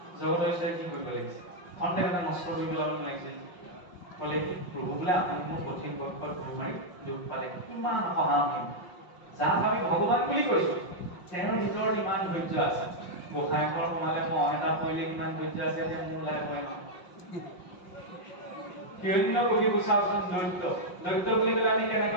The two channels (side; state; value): right; late; 5.6 ms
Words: জগতৰ ঈশ্বৰে কি কৰিব লাগিছে? খন্তে মানে নষ্ট কৰি পেলাব লাগিছিল। ক'লে কি প্ৰভু বোলে আপুনি মোৰ কঠিন বক্ষত গুৰ মাৰি দুখ পালে, কিমান সহানুভূতি। যাক আমি ভগৱান বুলি কৈছো, তেওঁৰ ভিতৰত ইমান ধৈৰ্য আছে। গোসাঁই ঘৰ সোমালে মহ এটা পৰিলে কিমান ধৈৰ্য আছে, এতিয়া মোৰ ওলাই পৰে নহয়। হিৰণ্য কশিপু চাওকচোন, দৈত্য বুলি ক'লে আমি